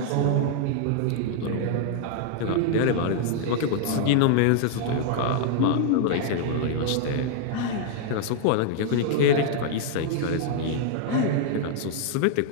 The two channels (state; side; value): different; both; correlation 0.00